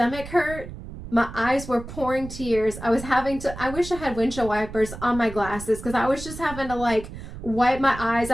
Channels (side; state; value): right; noise; rumble, 12 dB below the sound